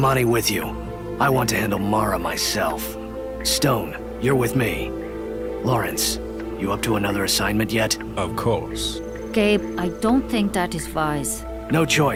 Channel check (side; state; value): both; identical; correlation 1.00